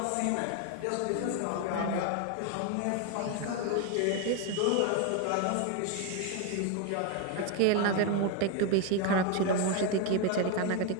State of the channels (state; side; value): different; both; correlation 0.01